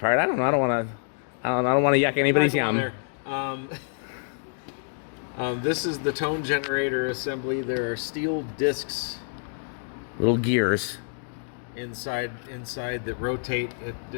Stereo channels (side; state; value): right; silent; digital silence